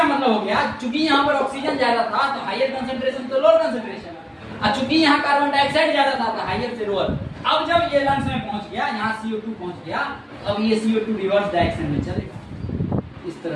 मतलब हो गया, चूंकि यहाँ पर ऑक्सीजन ज्यादा था तो हायर कंसंट्रेशन तो लोअर कंसंट्रेशन, और चूंकि यहाँ कार्बन डाइऑक्साइड ज्यादा था तो हायर से लोअर। अब जब ये लंग्स में पहुंच गया, यहाँ CO2 पहुंच गया, अब ये CO2 रिवर्स डायरेक्शन में चलेगा इस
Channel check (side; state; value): both; identical; correlation 1.00